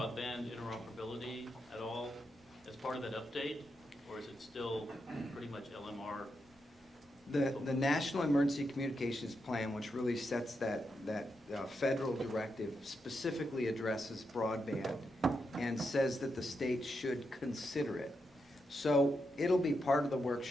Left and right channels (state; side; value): normal; both; correlation 0.84